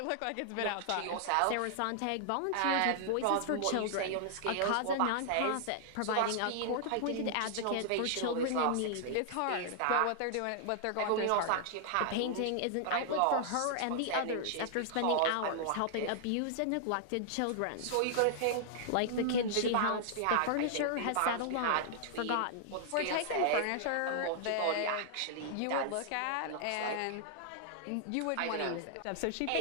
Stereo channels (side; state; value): both; different; correlation -0.01